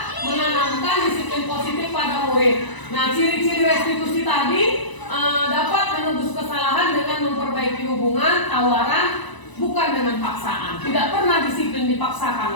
menanamkan disiplin positif pada murid. Nah, ciri-ciri restitusi tadi dapat menebus kesalahan dengan memperbaiki hubungan, tawaran, bukan dengan paksaan. Tidak pernah disiplin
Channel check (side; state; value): right; late; 1.0 ms